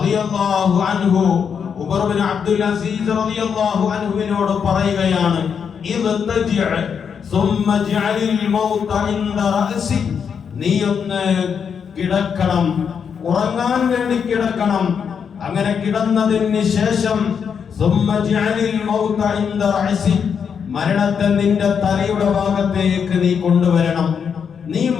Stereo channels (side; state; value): right; quieter; 6.9 dB